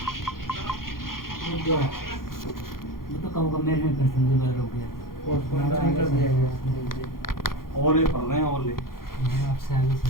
ओले पड़ रहे हैं ओले। आपसे आगे चल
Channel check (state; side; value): late; right; 0.92 ms